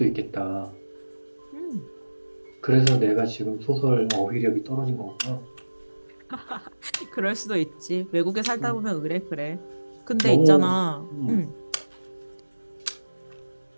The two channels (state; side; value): inverted; both; correlation -1.00